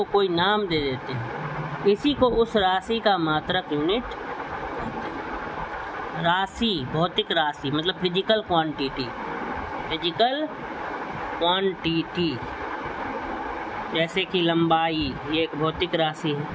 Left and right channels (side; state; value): both; identical; correlation 1.00